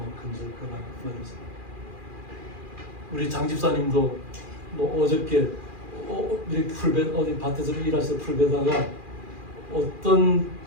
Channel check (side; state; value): left; late; 2.4 ms